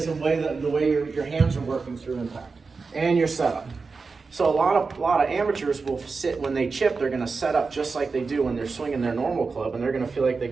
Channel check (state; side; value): quieter; left; 4.5 dB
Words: of the way your hands are working through impact and your setup. So a lot of amateurs will sit when they chip. They're going to set up just like they do when they're swinging their normal club, and they're going to feel like they